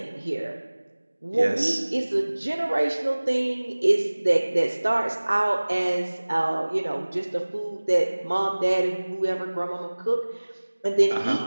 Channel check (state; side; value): inverted; both; correlation -1.00